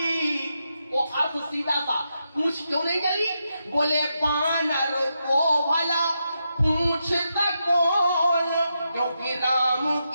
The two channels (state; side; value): inverted; both; correlation -0.85